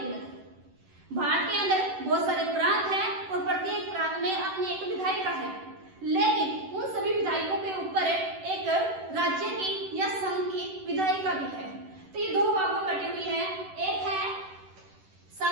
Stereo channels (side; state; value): left; late; 11 ms